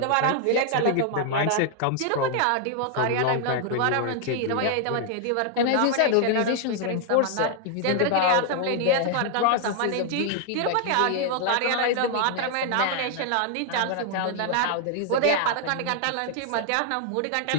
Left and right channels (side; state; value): both; different; correlation 0.00